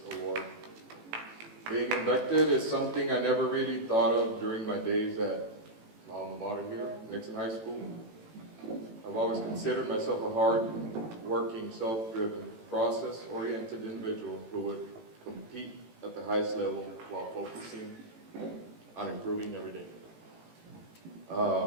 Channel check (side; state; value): left; late; 18 ms